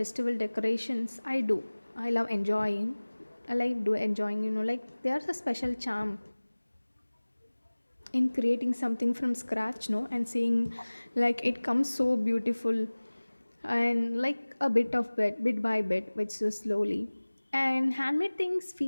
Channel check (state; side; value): inverted; both; correlation -1.00